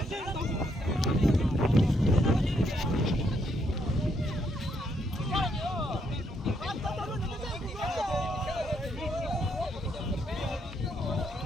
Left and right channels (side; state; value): both; normal; correlation 0.74